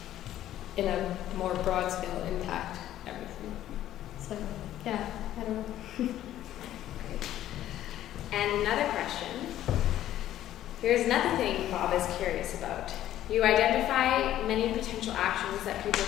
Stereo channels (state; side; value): quieter; right; 12.7 dB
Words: in a more broad scale, impact everything. So, yeah, I don't know. And another question. Here's another thing Bob is curious about. You identify many potential actions that people